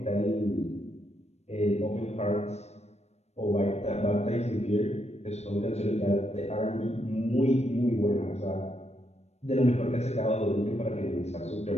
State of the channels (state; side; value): late; right; 0.31 ms